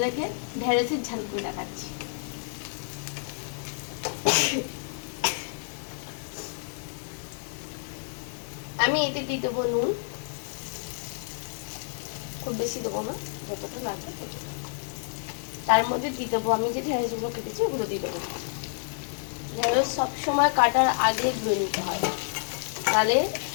ঢেঁড়সের ঝাল করে দেখাচ্ছি। আমি এতে দিয়ে দেবো নুন, খুব বেশি দেবো না, যতটা লাগবে ততটা। তার মধ্যে দিয়ে দেবো আমি যে ঢেঁড়সগুলো কেটেছি ওগুলো দিয়ে দেবো। ঢেঁড়স সবসময় কাটার আগে ধুয়ে নিতে হয়, তাহলে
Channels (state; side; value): silent; right; digital silence